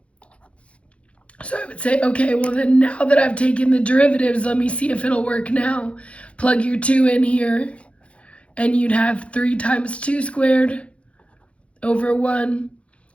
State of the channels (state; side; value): late; right; 0.061 ms